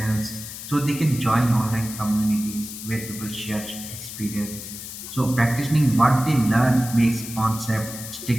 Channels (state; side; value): noise; left; hiss, 10 dB below the sound